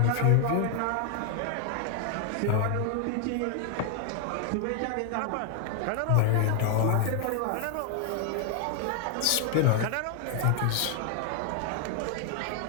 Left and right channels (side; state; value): both; different; correlation 0.00